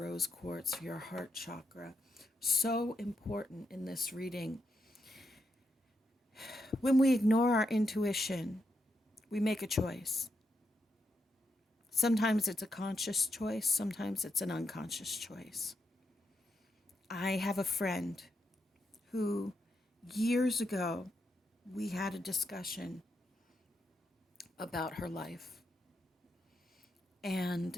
quartz, your heart chakra. So important in this reading. When we ignore our intuition, we make a choice. Sometimes it's a conscious choice, sometimes it's an unconscious choice. I have a friend who years ago we had a discussion about her life.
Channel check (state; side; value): normal; both; correlation 0.82